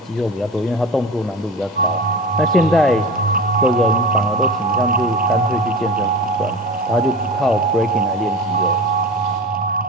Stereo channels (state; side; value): normal; both; correlation 0.32